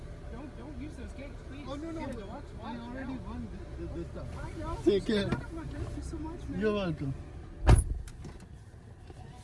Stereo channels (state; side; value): identical; both; correlation 1.00